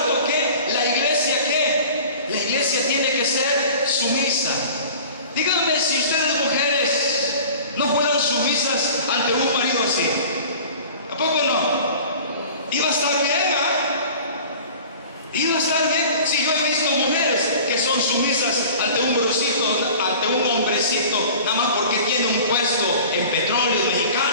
que la iglesia, ¿qué? La iglesia tiene que ser sumisa. Díganme si ustedes, mujeres, no fueran sumisas ante un marido así. ¿A poco no? Iba a estar bien, ¿ah? Iba a estar bien. Si yo he visto mujeres que son sumisas ante un brocito, ante un hombrecito, nada más porque tiene un puesto en Petróleos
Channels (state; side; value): inverted; both; correlation -0.42